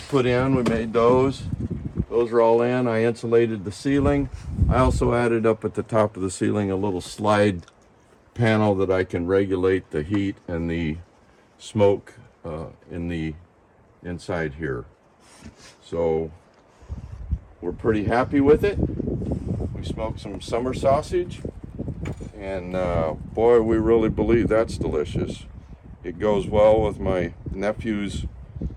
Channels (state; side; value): identical; both; correlation 1.00